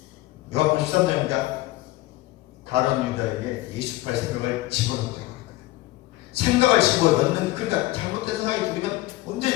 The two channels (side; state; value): right; quieter; 17.9 dB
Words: 요한복음 13장이니까 가룟 유다에게 28 생각을 집어넣었다고 합니다. 생각을 집어넣는, 그러니까 잘못된 생각이 들으면